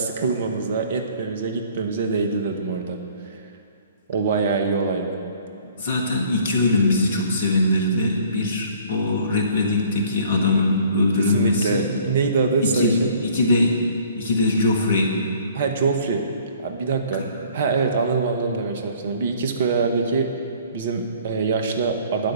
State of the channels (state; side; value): inverted; both; correlation -0.54